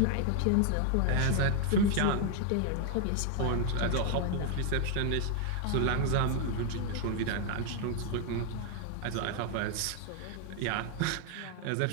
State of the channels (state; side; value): different; both; correlation 0.00